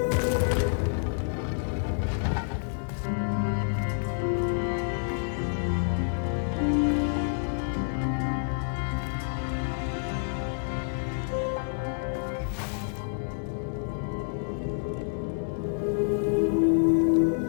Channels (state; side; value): silent; right; 58 dB below the other